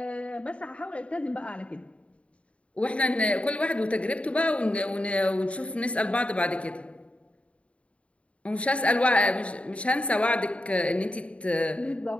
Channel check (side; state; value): right; late; 0.062 ms